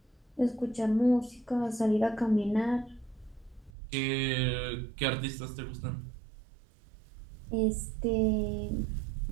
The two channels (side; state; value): left; drops out; at 3.7 s